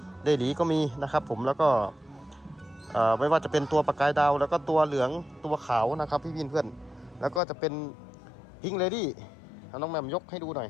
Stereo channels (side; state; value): right; drops out; at 7.4 s